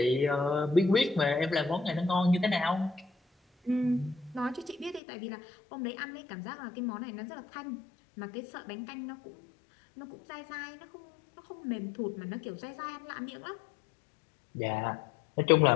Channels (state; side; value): drops out; right; at 5.0 s